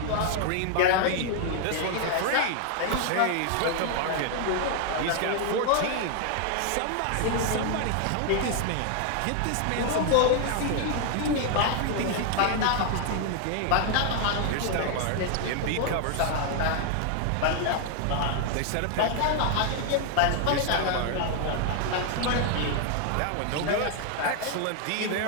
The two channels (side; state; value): both; different; correlation 0.00